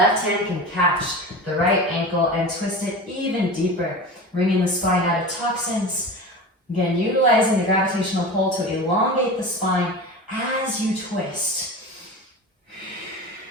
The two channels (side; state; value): both; normal; correlation 0.31